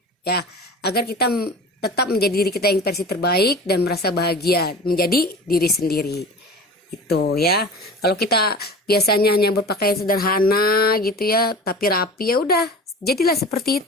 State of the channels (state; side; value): normal; both; correlation 0.37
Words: ya, agar kita tetap menjadi diri kita yang versi terbaik dan merasa bahagia menjadi diri sendiri. Itu ya. Kalau kita biasanya hanya berpakaian sederhana gitu ya, tapi rapi, ya udah, jadilah seperti